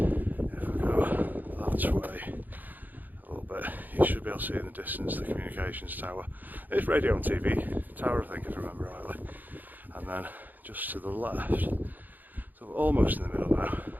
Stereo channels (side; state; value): left; late; 0.085 ms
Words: if I go that way a little bit, you should be able to see in the distance the communications tower. It's radio and TV tower, I think, if I remember rightly. And then just to the left, so we're almost in the middle now,